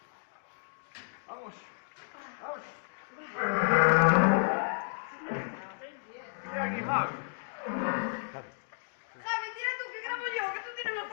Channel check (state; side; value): silent; right; digital silence